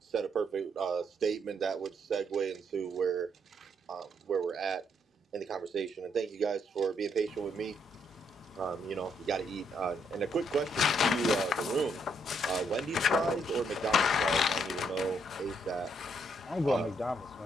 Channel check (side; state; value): both; normal; correlation 0.73